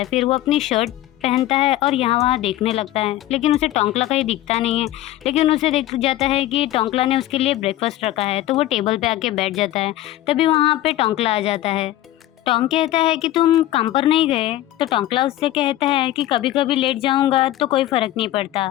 फिर वो अपनी शर्ट पहनता है और यहाँ वहाँ देखने लगता है, लेकिन उसे टोंकला कहीं दिखता नहीं है। लेकिन उसे दिख जाता है कि टोंकला ने उसके लिए ब्रेकफास्ट रखा है, तो वो टेबल पे आके बैठ जाता है। तभी वहाँ पे टोंकला आ जाता है। टोंक कहता है कि तुम काम पर नहीं गए? तो टोंकला उससे कहता है कि कभी कभी लेट जाऊंगा तो कोई फ़र्क नहीं पड़ता,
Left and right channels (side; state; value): right; quieter; 14.6 dB